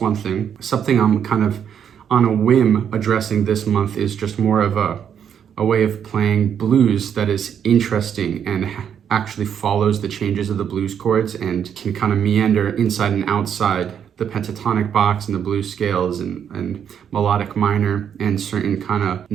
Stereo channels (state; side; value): quieter; left; 8.4 dB